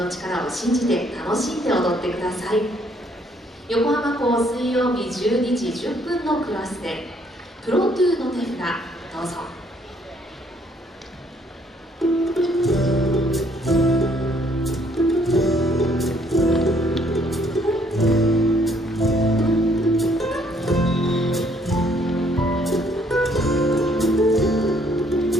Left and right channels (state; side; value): normal; both; correlation 0.66